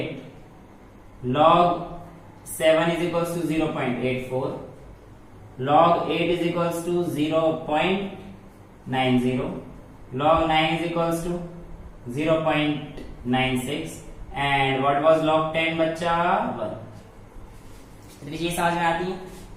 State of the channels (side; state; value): both; identical; correlation 1.00